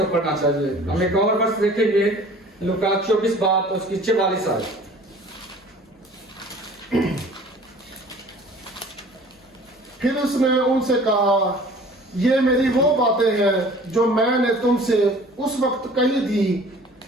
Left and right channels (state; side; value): normal; both; correlation 0.48